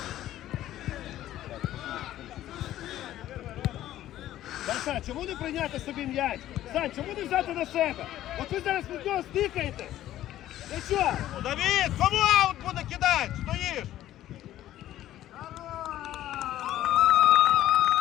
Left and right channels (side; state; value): right; quieter; 13.3 dB